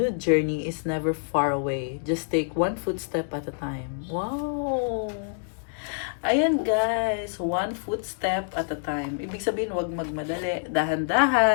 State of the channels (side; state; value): right; silent; digital silence